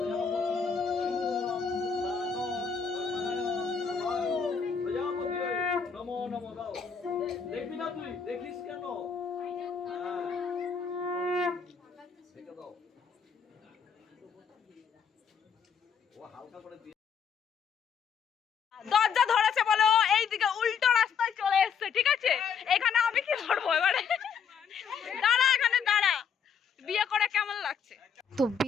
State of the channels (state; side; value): quieter; right; 6.5 dB